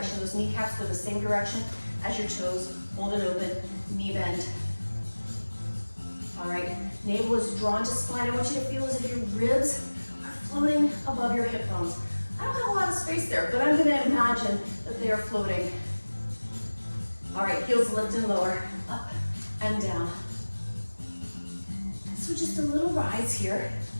Those kneecaps go the same direction as your toes. Hold it open. Knee bend. All right, navel is drawn to spine. I want you to feel as if your ribs are floating above your hip bones. I don't have a lot of space there, but I'm gonna imagine that they are floating. All right, heels lift and lower, up and down. So just a little rise here.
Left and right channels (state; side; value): inverted; both; correlation -1.00